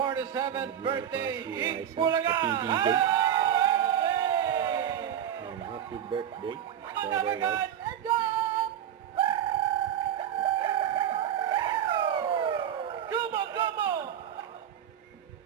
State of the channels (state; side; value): quieter; left; 10.0 dB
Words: birthday, Eat Bulaga! Bulaga! Happy birthday. Let's go! Come on, come on!